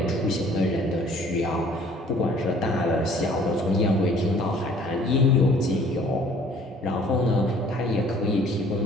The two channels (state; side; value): normal; both; correlation 0.55